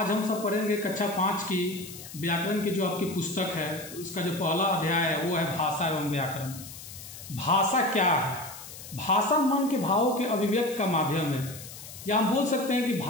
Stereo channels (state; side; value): noise; left; hiss, 14 dB below the sound